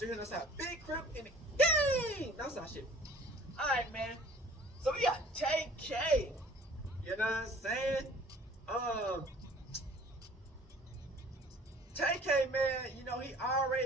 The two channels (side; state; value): both; normal; correlation 0.50